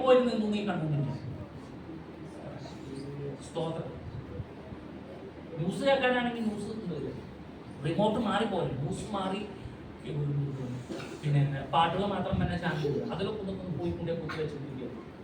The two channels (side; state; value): both; identical; correlation 1.00